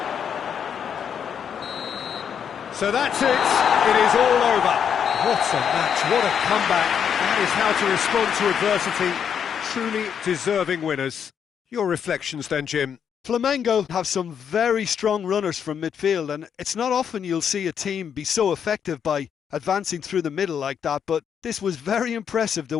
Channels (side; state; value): right; quieter; 7.9 dB